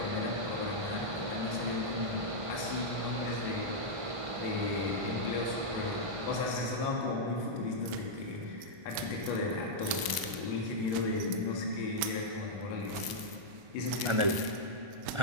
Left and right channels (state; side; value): late; left; 1.0 ms